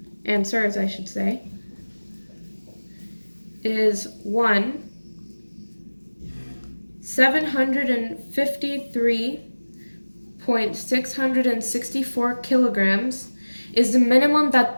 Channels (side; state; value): both; inverted; correlation -1.00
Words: answers, I should say, is 753.664 kilograms is the minimum